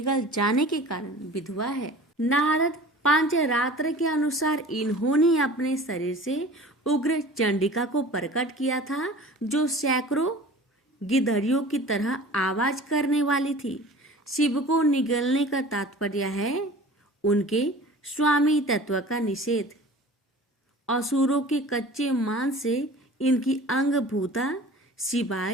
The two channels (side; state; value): both; normal; correlation 0.42